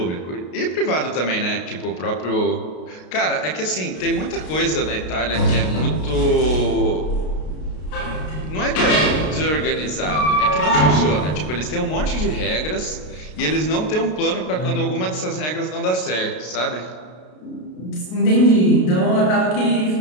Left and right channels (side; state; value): right; late; 33 ms